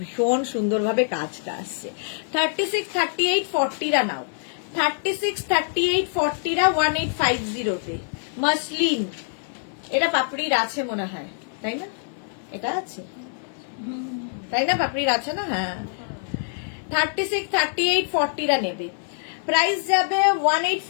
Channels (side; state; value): right; silent; 56 dB below the other